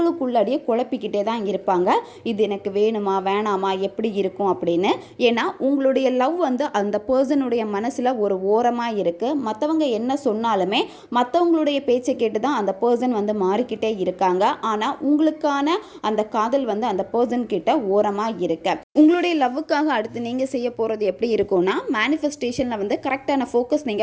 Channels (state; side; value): identical; both; correlation 1.00